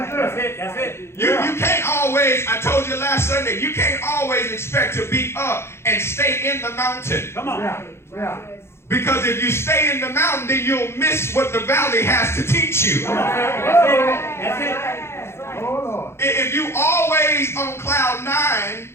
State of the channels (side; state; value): right; late; 0.12 ms